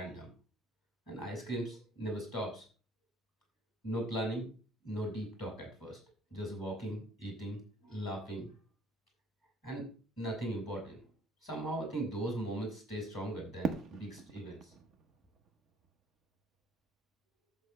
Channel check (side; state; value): both; normal; correlation 0.58